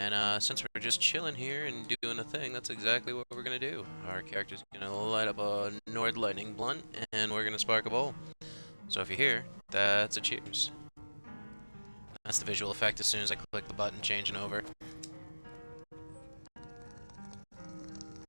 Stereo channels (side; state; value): both; inverted; correlation -1.00